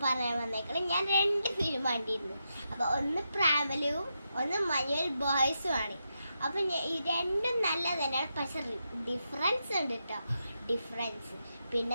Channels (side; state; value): both; inverted; correlation -0.85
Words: പറയാൻ വന്നേക്കണം, ഞാൻ 2 ഫിലിം കണ്ടിരുന്നു. അപ്പോൾ ഒന്ന് പ്രാമലും ഒന്ന് മഞ്ഞുവൽ ബോയ്സും ആണ്. അപ്പോൾ ഈ രണ്ടും നല്ല തന്നെയാണ്, പക്ഷെ ഡിഫറൻസ് ഉണ്ട് കേട്ടോ. ഡിഫറൻസ്